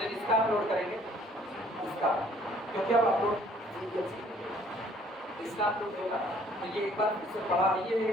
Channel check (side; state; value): both; normal; correlation 0.59